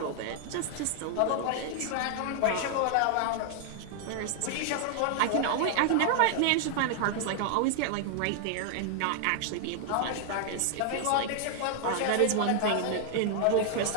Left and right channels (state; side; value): different; both; correlation 0.00